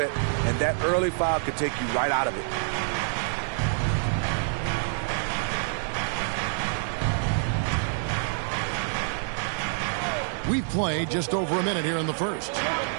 and that early foul could take you right out of it. We've played just over a minute here in the first.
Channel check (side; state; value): left; silent; 60 dB below the other